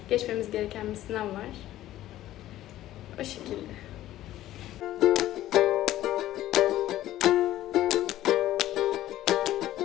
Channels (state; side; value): quieter; right; 14.1 dB